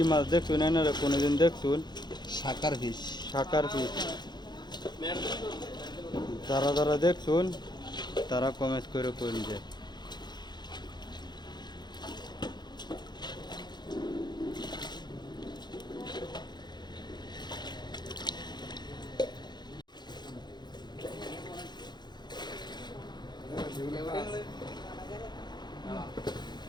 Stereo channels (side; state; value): right; late; 0.21 ms